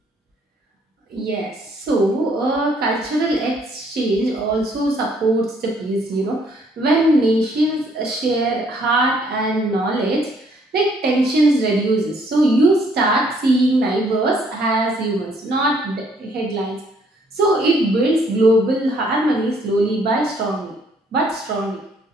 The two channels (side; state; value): both; normal; correlation 0.65